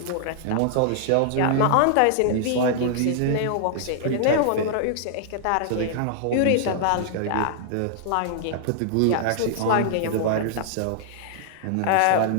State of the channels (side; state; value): both; different; correlation -0.01